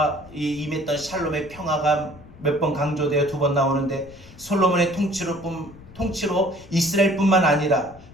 이 임했던 샬롬의 평화가 몇 번 강조되어 2번 나오는데, 솔로몬의 통치로 이스라엘뿐만 아니라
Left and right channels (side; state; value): left; noise; rumble, 21 dB below the sound